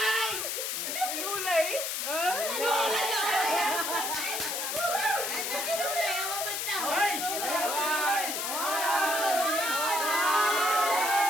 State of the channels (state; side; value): noise; left; hiss, 2 dB below the sound